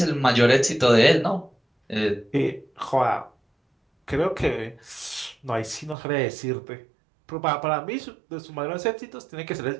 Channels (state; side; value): drops out; left; at 6.0 s